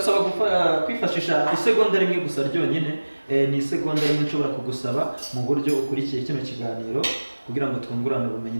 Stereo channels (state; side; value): inverted; both; correlation -1.00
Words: kwifashisha isegonda rimwe gusa ryonyine. Ni isegonda rimwe nshobora kugusaba mu buryo ukurikiye kino kiganiro, kugira ngo twungurane ubumenyi